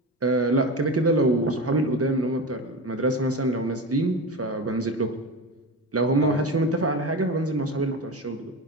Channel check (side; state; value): both; normal; correlation 0.25